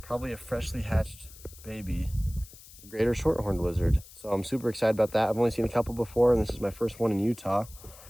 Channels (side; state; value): left; noise; hiss, 20 dB below the sound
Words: Probably a freshly hatched baby, the greater shorthorned lizard. So I'm super excited about that. I've only seen a couple before, and this is my first one in Utah.